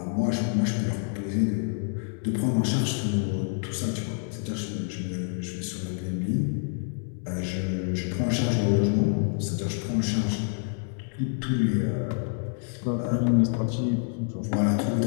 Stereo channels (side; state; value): right; silent; 56 dB below the other